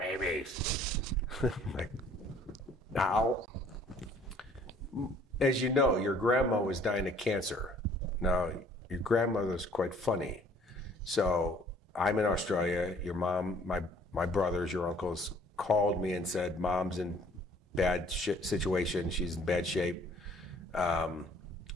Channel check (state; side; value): normal; both; correlation 0.57